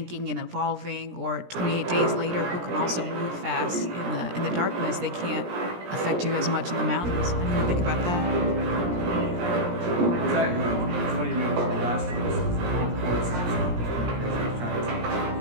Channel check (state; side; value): late; left; 17 ms